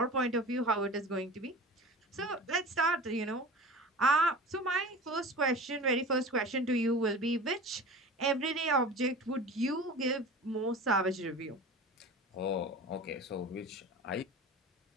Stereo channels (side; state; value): both; normal; correlation 0.36